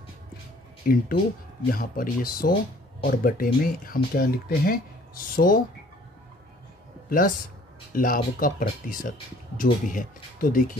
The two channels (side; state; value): both; normal; correlation 0.55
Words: इंटू यहाँ पर ये 100 और बटे में हम क्या लिखते हैं, 100 प्लस लाभ का प्रतिशत जो भी है। तो